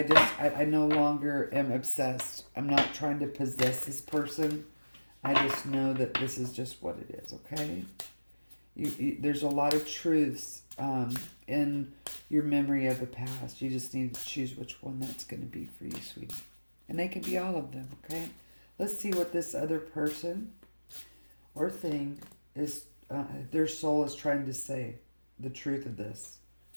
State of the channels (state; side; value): inverted; both; correlation -1.00